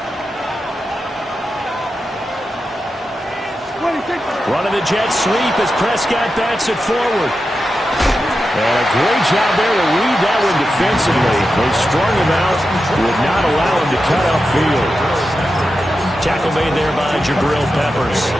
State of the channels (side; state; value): both; normal; correlation 0.90